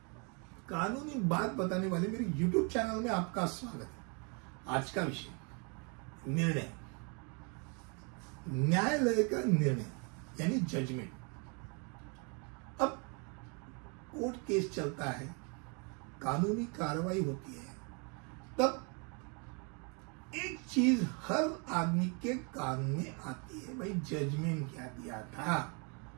कानूनी बात बताने वाले मेरे YouTube चैनल में आपका स्वागत है। आज का विषय निर्णय, न्यायालय का निर्णय यानी जजमेंट। अब कोर्ट केस चलता है, कानूनी कार्रवाई होती है, तब एक चीज हर आदमी के कान में आती है, भाई जजमेंट क्या दिया था,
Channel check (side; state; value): left; quieter; 34.6 dB